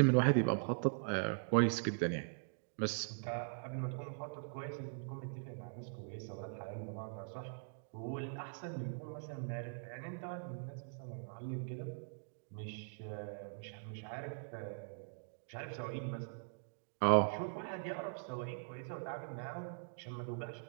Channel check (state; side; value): silent; left; digital silence